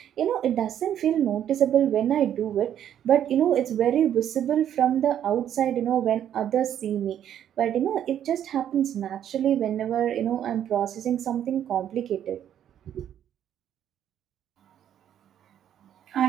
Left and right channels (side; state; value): left; quieter; 10.1 dB